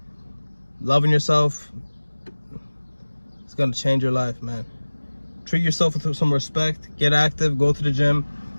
loving yourself is going to change your life, man. Treat yourself with some respect. Get active. Go to the gym.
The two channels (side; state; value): both; inverted; correlation -1.00